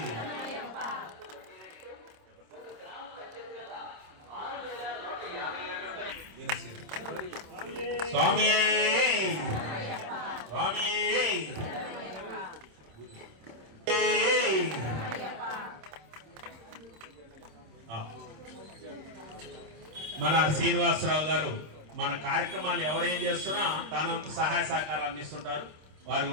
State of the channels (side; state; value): left; late; 26 ms